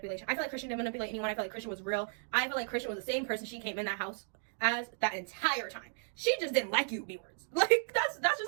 I feel like Christian didn't manipulate anyone. I feel like Christian was real. I feel like Christian was the same person she came in that house as that entire time. She just didn't like you, B-words. Like, that's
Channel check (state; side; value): silent; left; 55 dB below the other